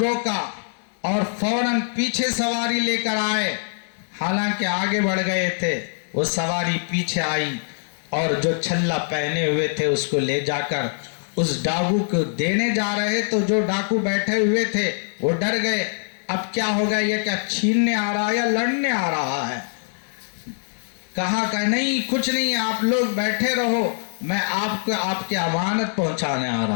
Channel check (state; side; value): silent; right; digital silence